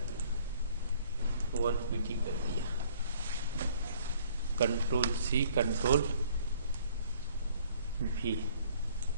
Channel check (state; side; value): inverted; both; correlation -0.57